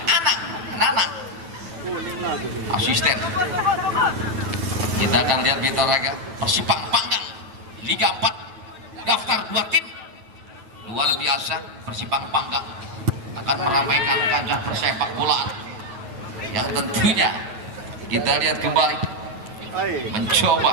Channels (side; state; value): left; late; 9.2 ms